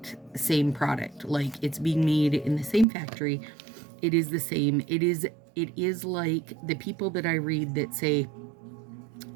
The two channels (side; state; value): left; drops out; at 2.9 s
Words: same product. Like, it's being made in the same factory. It is the same. It is like the people that I read that say,